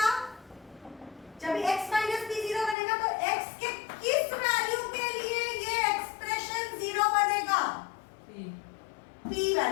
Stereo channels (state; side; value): drops out; right; at 2.8 s